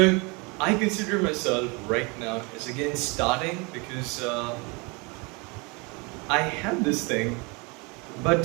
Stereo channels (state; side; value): quieter; left; 29.0 dB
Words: I consider myself right now as again starting because I had this thing,